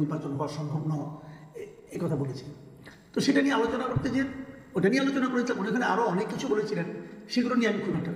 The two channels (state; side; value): identical; both; correlation 1.00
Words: হওয়া সম্ভব নয়, এই কথা বলেছিলেন। তো সেটা নিয়ে আলোচনা করতে যে ওটা নিয়ে আলোচনা করেছিলাম, ওখানে আরও অনেক কিছু বলেছিলেন, সেগুলো নিয়ে আমি খুব একটা